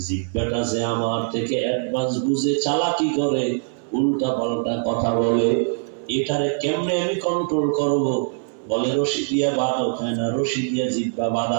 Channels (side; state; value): left; silent; 64 dB below the other